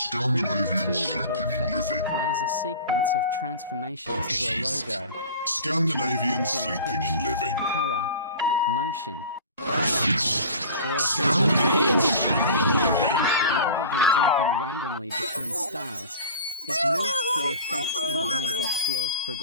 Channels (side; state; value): both; inverted; correlation -0.39